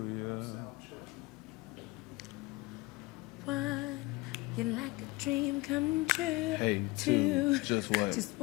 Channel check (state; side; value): quieter; right; 22.7 dB